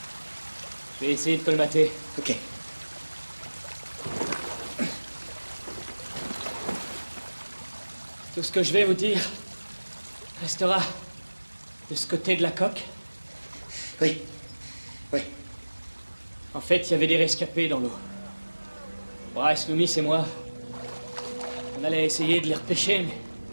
Je vais essayer de colmater. Ok. Tout ce que je vais vous dire restera de ce côté de la coque. Oui. Oui. En fait, il y avait des rescapés dans l'eau. Bryce, Loomis et moi, on allait essayer de les repêcher, mais...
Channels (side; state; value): both; inverted; correlation -1.00